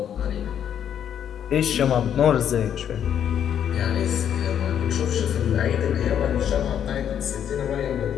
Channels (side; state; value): right; quieter; 9.2 dB